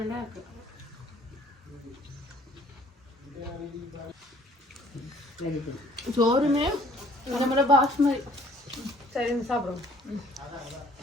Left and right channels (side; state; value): both; normal; correlation 0.57